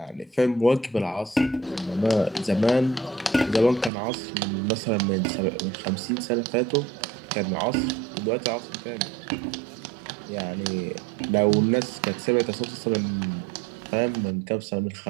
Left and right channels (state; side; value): drops out; left; at 3.9 s